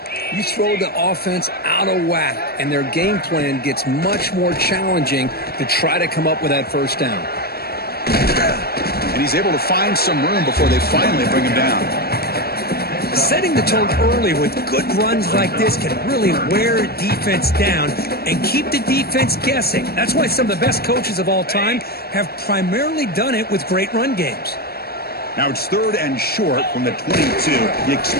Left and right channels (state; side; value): late; right; 0.45 ms